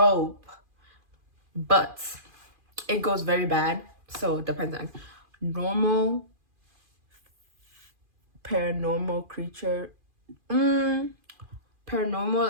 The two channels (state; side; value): late; left; 2.4 ms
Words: but it goes very bad. So it depends on normal, paranormal creature.